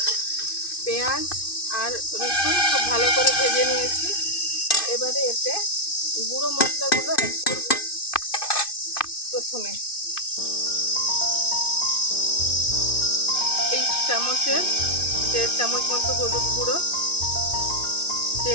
পেঁয়াজ আর রসুন খুব ভালো করে ভেজে নিয়েছি। এবারে এতে গুঁড়ো মশলাগুলো অ্যাড করব। প্রথমে এই চামচের 1.5 চামচ মতো হলুদ গুঁড়ো,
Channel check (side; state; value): right; late; 2.5 ms